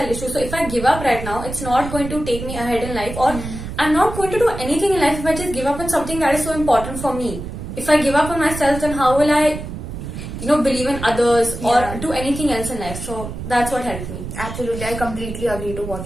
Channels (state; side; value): noise; right; rumble, 8 dB below the sound